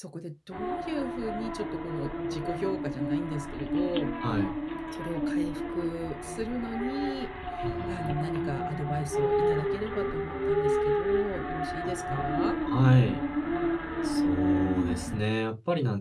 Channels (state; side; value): identical; both; correlation 1.00